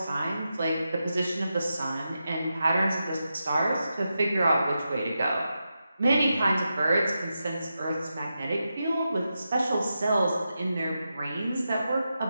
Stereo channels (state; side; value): inverted; both; correlation -0.88